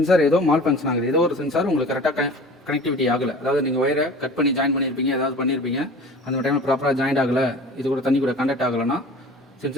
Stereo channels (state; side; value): normal; both; correlation 0.41